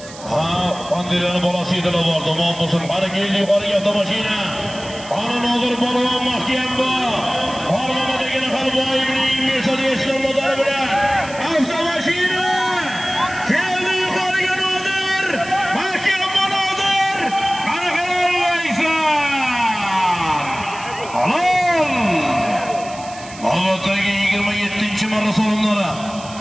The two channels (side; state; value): right; noise; hiss, 17 dB below the sound